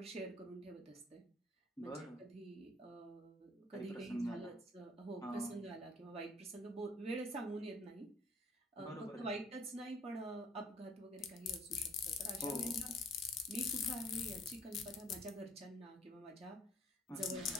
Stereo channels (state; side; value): normal; both; correlation 0.57